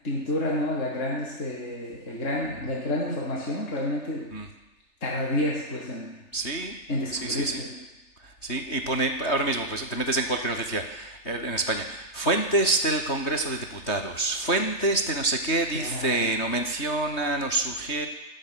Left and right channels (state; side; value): late; right; 3.2 ms